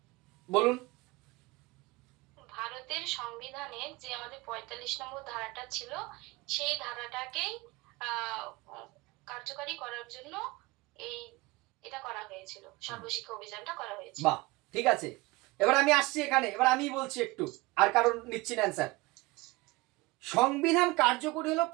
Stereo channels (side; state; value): left; quieter; 22.4 dB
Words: বলুন। ভারতের সংবিধানে যে আমাদের 45 নম্বর ধারাটা ছিল সেই ধারাটাকেই কার্যকারী করার জন্য এটা করা হয়েছিল, সর্বশিক্ষা অভিযানটা করা হয়েছিল। বাহ, ঠিক আছে। এবার আমি আসছি এখানে, এবার আমি বলছি একটু, আর কারণ নিচ্ছি না অ্যান্সার। সংবিধান কার্যকরী হলো